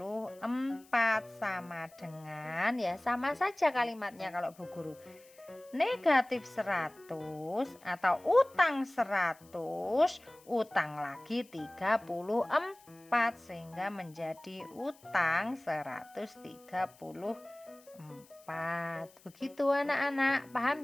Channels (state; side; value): noise; left; hiss, 26 dB below the sound